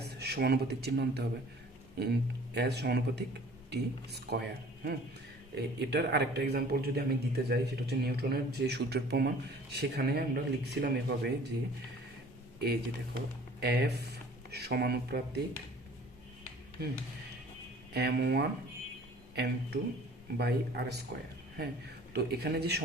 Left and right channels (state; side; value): normal; both; correlation 0.49